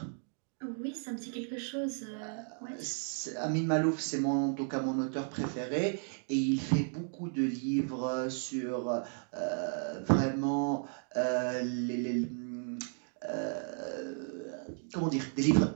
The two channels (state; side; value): silent; left; 55 dB below the other